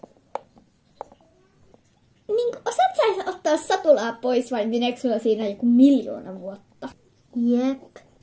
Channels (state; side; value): identical; both; correlation 1.00